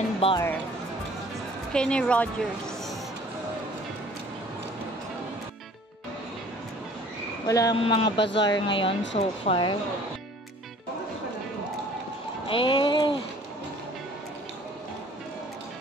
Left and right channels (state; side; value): normal; both; correlation 0.51